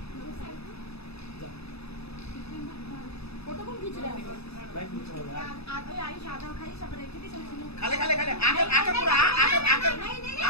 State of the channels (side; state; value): right; late; 0.79 ms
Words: কতক্ষণ কিছু রাখবে भाई कुछ हो रहा है। आधे आई सादा खाई सब रखे थे चल खाले खाले खाले आकर आकर पूरा आकर आकर